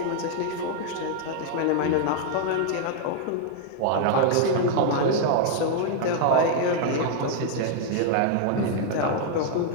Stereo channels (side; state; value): both; different; correlation 0.00